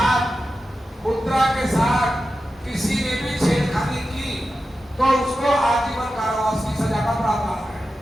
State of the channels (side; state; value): both; normal; correlation 0.92